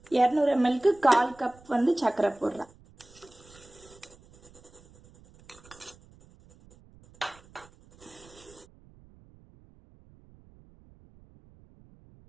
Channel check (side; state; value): right; noise; rumble, 26 dB below the sound